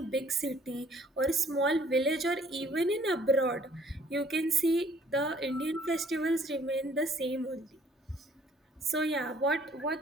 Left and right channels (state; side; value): normal; both; correlation 0.59